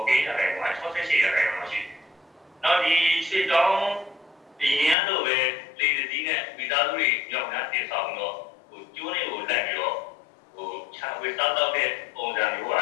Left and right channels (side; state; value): right; drops out; at 5.0 s